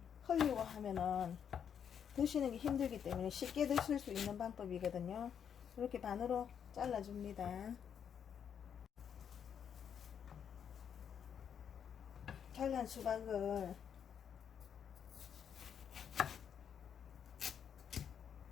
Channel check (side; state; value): right; quieter; 8.1 dB